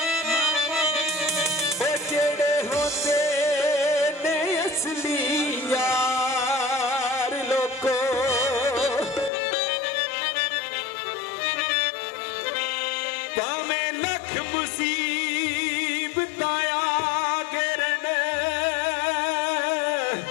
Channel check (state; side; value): drops out; right; at 9.3 s